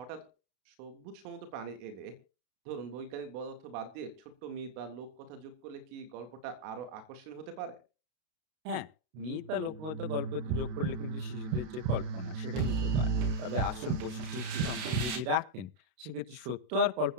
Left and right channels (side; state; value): left; late; 33 ms